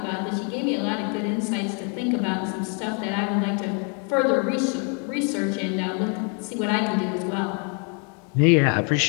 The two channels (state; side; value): quieter; right; 38.5 dB